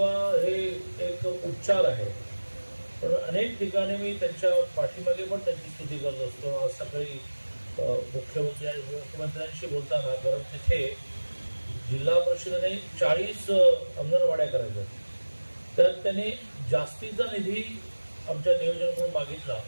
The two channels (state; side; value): inverted; both; correlation -1.00